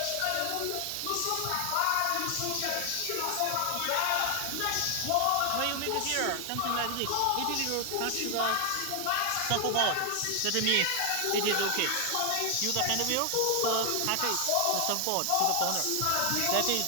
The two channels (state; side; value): different; both; correlation 0.00